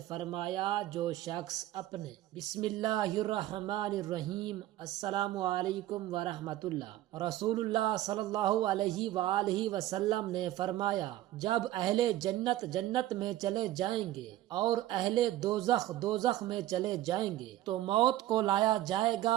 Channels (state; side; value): quieter; left; 14.5 dB